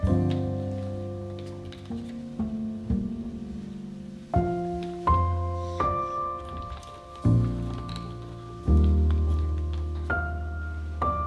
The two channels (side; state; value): both; identical; correlation 1.00